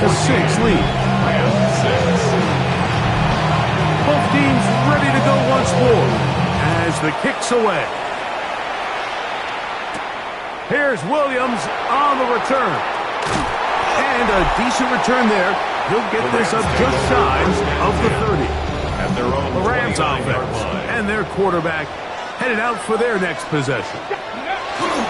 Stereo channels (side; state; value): both; identical; correlation 1.00